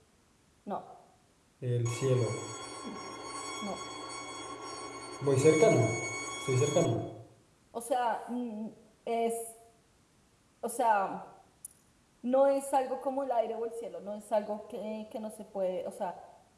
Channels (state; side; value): identical; both; correlation 1.00